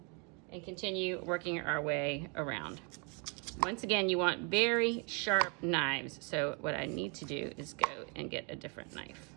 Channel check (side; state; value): left; quieter; 34.6 dB